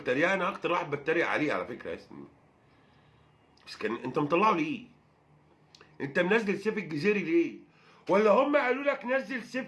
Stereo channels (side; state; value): both; identical; correlation 1.00